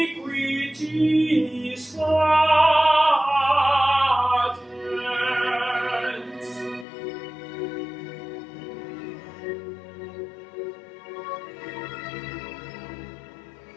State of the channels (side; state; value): right; drops out; at 6.9 s